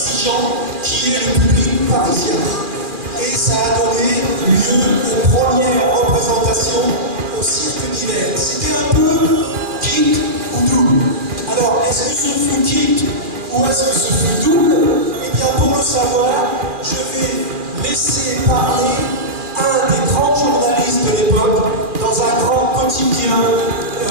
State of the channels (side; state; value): left; late; 2.4 ms